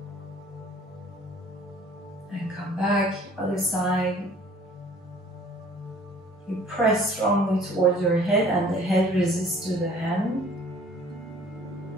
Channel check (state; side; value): normal; both; correlation 0.53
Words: And come back, other side. You press strongly towards your head and the head resists to the hand.